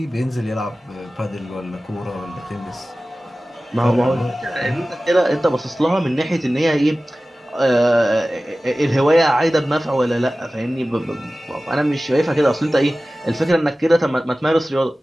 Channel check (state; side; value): normal; both; correlation 0.96